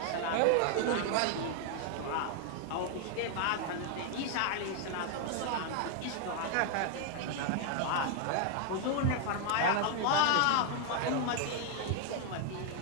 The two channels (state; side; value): different; both; correlation 0.00